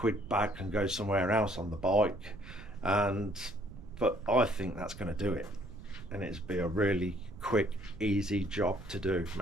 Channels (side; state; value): right; noise; rumble, 15 dB below the sound